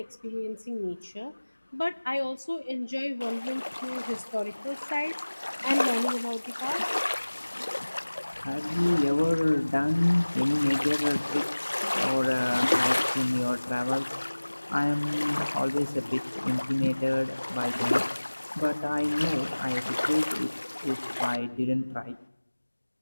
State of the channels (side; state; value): both; inverted; correlation -1.00